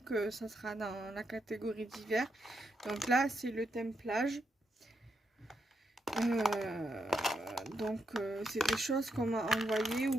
ça sera dans la catégorie d'hiver. Donc là, c'est le thème plage. C'est des choses qu'on m'a envoyées ou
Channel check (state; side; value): normal; both; correlation 0.81